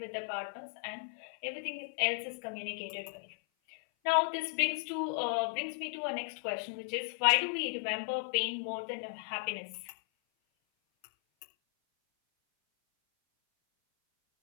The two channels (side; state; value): right; silent; 54 dB below the other